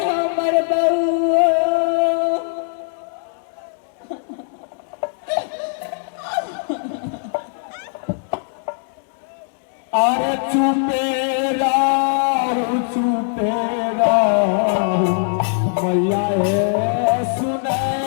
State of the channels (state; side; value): silent; right; digital silence